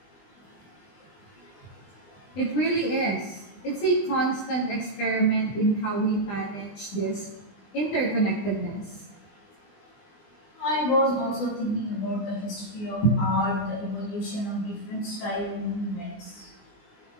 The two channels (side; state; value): right; late; 20 ms